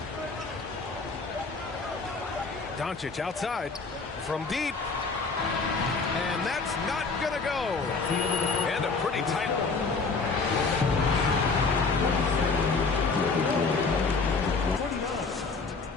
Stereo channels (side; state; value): right; quieter; 4.3 dB